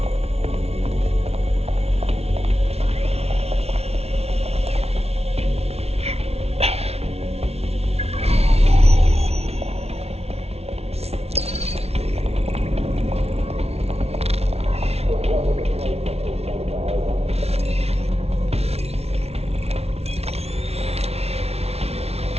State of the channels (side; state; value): left; late; 0.30 ms